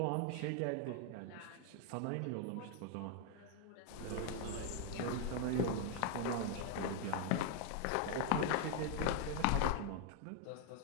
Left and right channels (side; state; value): both; different; correlation 0.00